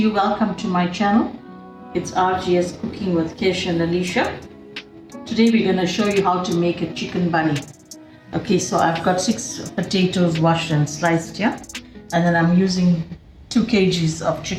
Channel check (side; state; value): both; identical; correlation 1.00